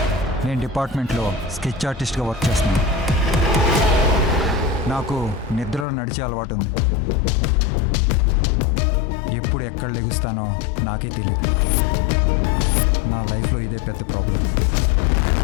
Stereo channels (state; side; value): drops out; right; at 5.9 s